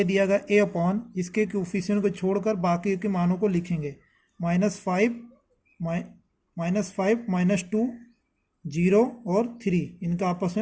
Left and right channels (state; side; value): identical; both; correlation 1.00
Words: दिया गया a अपॉन, इसके कोफिशिएंट को छोड़कर बाकी के मानों को लिखेंगे, -5 -2 0 और 3, इनका आपस